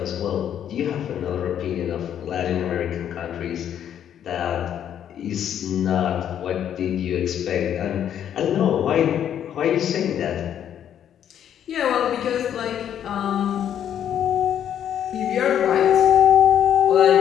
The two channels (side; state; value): right; quieter; 9.7 dB